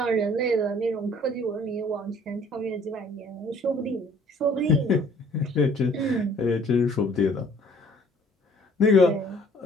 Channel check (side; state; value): both; normal; correlation 0.56